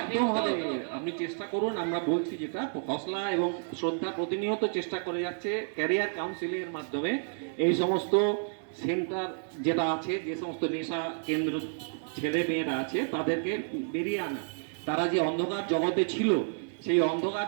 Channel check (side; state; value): left; silent; digital silence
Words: হবে হবে। তো। আপনি চেষ্টা করুন। আমরা বলছি যেটা হসলা এবং শ্রদ্ধা প্রতিনিয়ত চেষ্টা করে যাচ্ছে ক্যারিয়ার কাউন্সিলিং এর মাধ্যমে এই সমস্ত সেন্টার যেটা আছে, যে সমস্ত নেশা কেন্দ্র ছেলে মেয়েরা আছে তাদেরকে বেরিয়ে আনা। তারা যে অন্ধকার জগতে ছিল সেই